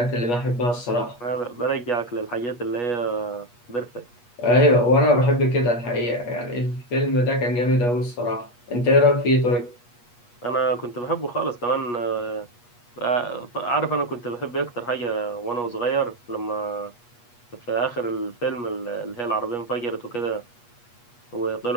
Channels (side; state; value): right; late; 8.3 ms